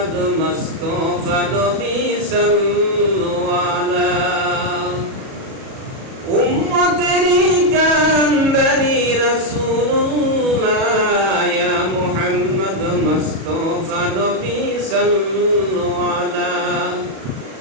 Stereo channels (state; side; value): late; left; 37 ms